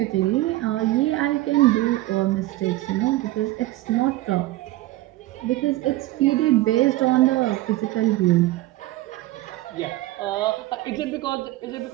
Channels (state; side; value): quieter; left; 17.2 dB